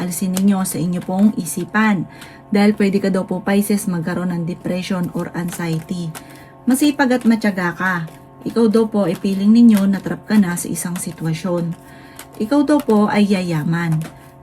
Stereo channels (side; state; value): both; identical; correlation 1.00